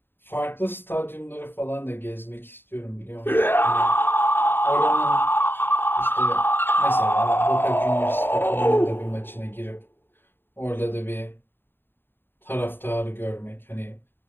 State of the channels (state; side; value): late; right; 0.10 ms